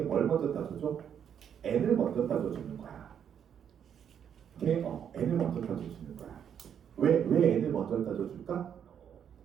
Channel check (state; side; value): quieter; left; 8.5 dB